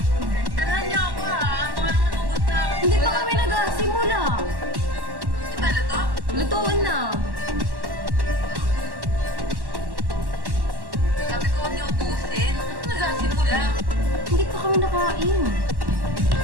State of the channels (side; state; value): left; late; 1.1 ms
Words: Tarahan niyo ako ha. Baka naman ugot na ako. Hindi pa kami nag-simula. Di ba luto? Lutuan na. Sabi ko huwag niyo ubusin. Ano nagsasimula? Hindi pa kami nakain.